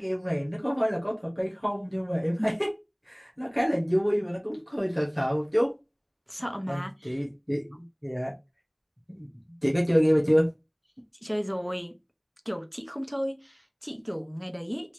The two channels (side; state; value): both; identical; correlation 1.00